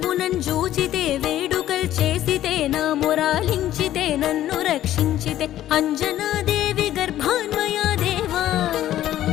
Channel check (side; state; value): right; quieter; 12.9 dB